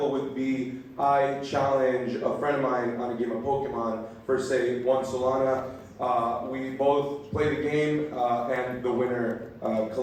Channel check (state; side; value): identical; both; correlation 1.00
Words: would be I challenge a friend of mine on a game of Pokemon for say one Solana. We both play the game and the winner